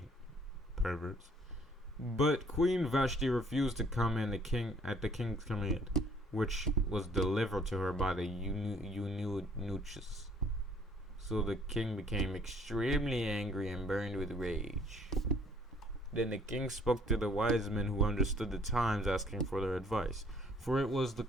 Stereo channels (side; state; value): both; normal; correlation 0.60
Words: Perverts. But Queen Vashti refused to come in at the king's command, which was delivered to her by the eunuchs. So the king became extremely angry and burned with rage. Then the king spoke to the wise men who understood the times, asking for their advice. For it was the